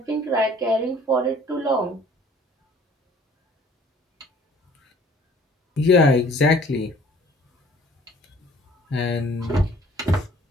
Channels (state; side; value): normal; both; correlation 0.55